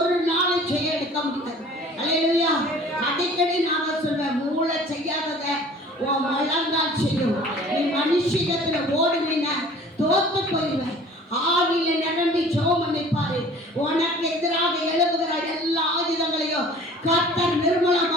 நாளை செய்ய எடுக்க முடியாது. அல்லேலூயா. அடிக்கடி நான் சொல்வேன், மூளை செய்யாதத உன் முழங்கால் செய்யும். நீ மனுஷிகத்துல ஓடுனீன்னா தோத்து போயிடுவேன். ஆவியில நிரம்பி ஜெபம் பண்ணிப்பாரு. உனக்கு எதிராக எழுப்புகிற எல்லா ஆயுதங்களையும் கர்த்தர்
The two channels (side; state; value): both; normal; correlation 0.47